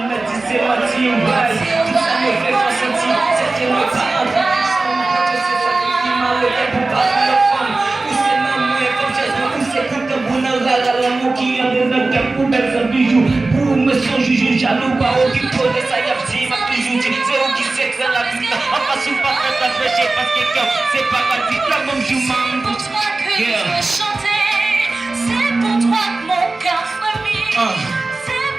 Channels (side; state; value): left; quieter; 3.3 dB